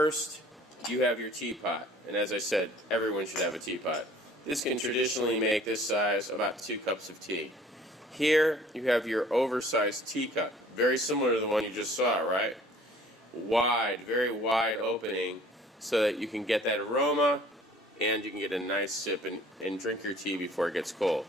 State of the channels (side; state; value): both; normal; correlation 0.52